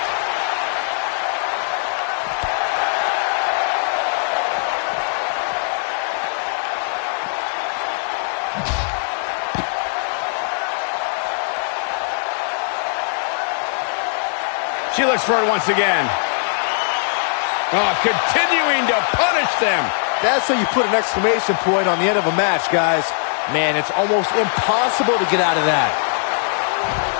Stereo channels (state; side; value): silent; right; digital silence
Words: She looks for it once again. Oh, continuing to punish them. That's how you put an exclamation point on the end of a match, guys. Man, it's almost impossible to get out of that.